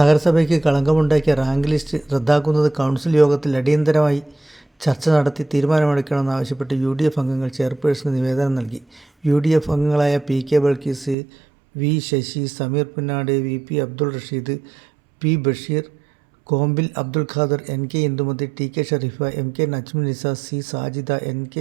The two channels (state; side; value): drops out; left; at 11.2 s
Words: കളങ്കമുണ്ടാക്കിയ റാങ്ക് ലിസ്റ്റ് റദ്ദാക്കുന്നത് കൗൺസിൽ യോഗത്തിൽ അടിയന്തരമായി ചർച്ച നടത്തി തീരുമാനമെടുക്കണമെന്നാവശ്യപ്പെട്ട് UDF അംഗങ്ങൾ ചെയർപേഴ്സന് നിവേദനം നൽകി. UDF അംഗങ്ങളായ PK Balkees, V Sasi, Sameer Punnad, VP Abdul Rasheed, P Basheer, കോമ്പിൽ Abdul Khader, NK Indumathi, TK Sharifa, MK Najmul നിസ, C സാജിദ,